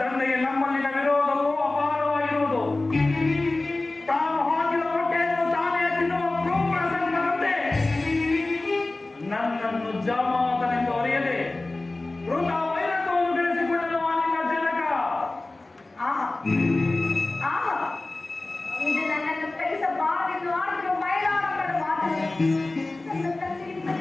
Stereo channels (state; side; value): quieter; right; 3.0 dB